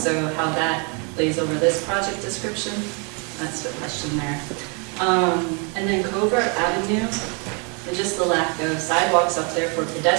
how that lays over this project description, that's the question there. And then Covert Avenue, and just the lack of sidewalks up there for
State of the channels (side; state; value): left; quieter; 34.7 dB